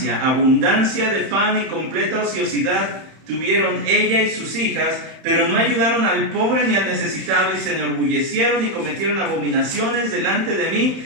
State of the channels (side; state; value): left; late; 31 ms